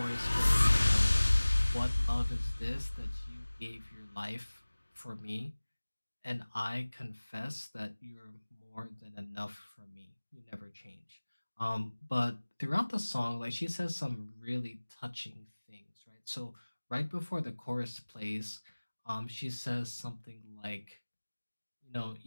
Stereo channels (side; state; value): both; inverted; correlation -1.00